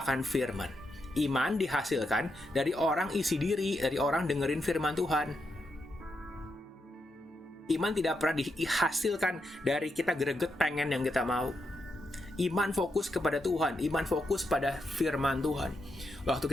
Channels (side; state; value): both; normal; correlation 0.83